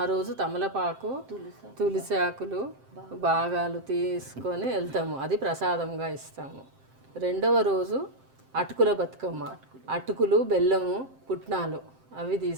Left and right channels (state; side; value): late; left; 7.6 ms